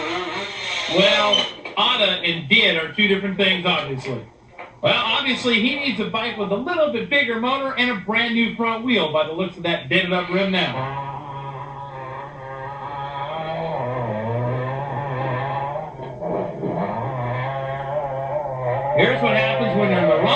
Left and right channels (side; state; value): both; identical; correlation 1.00